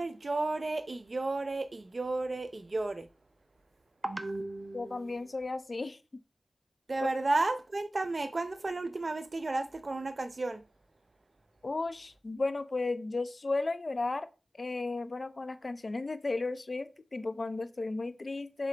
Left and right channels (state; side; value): normal; both; correlation 0.95